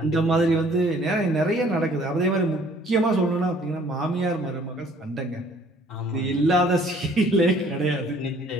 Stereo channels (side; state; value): both; normal; correlation 0.57